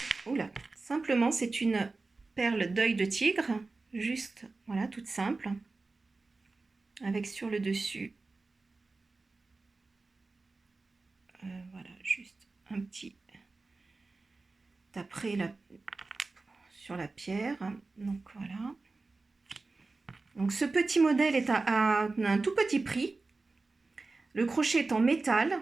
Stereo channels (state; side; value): quieter; left; 3.6 dB